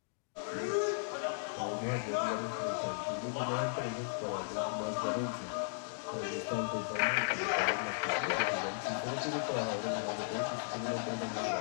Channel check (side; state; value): right; silent; digital silence